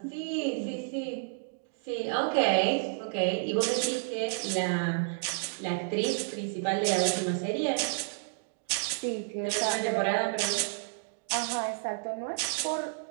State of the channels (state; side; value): silent; left; digital silence